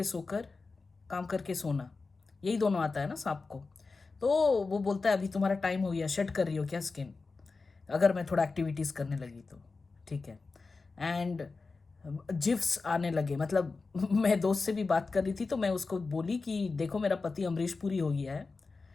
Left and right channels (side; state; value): right; quieter; 4.1 dB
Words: सोकर, काम करके सोना, यही दोनों आता है ना सांप को। तो वो बोलता है अभी तुम्हारा टाइम हो गया, शेड कर रही हो क्या स्किन? अगर मैं थोड़ा एक्टिविटीज़ करने लगी तो ठीक है। एंड जिफ्स आने लगे, मतलब मैं दोस्त से भी बात कर रही थी तो मैं उसको बोली कि देखो मेरा पति अमरीश पुरी हो गया है